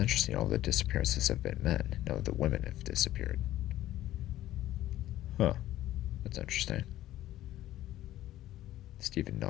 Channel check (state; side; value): quieter; right; 14.1 dB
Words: all the disappearances have been men. None of the women have disappeared. Huh. That's interesting. Stephen